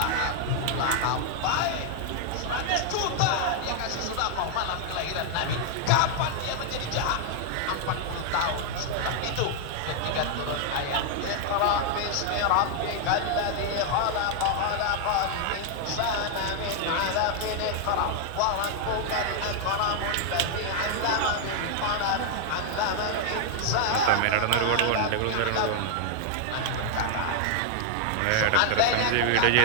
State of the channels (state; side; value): different; both; correlation 0.00